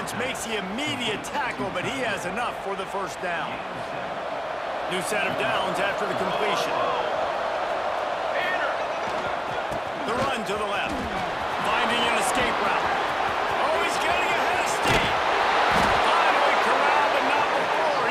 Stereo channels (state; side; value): identical; both; correlation 1.00